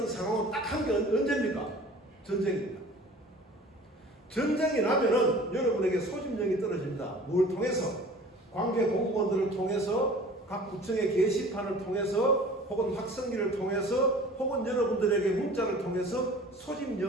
상황은 딱 한 게 언제입니까? 전쟁입니다. 전쟁이 나면은 여러분에게 소집령이 떨어집니다. 뭘 통해서? 관계 공무원들을 통해서, 각 구청의 게시판을 통해서, 혹은 확성기를 통해서, 혹은 여러분들에게 문자를 통해서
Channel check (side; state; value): both; normal; correlation 0.45